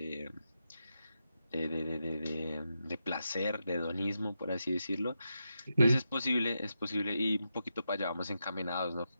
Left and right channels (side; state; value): both; inverted; correlation -0.86